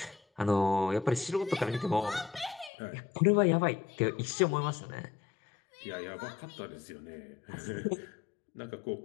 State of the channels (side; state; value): right; drops out; at 2.7 s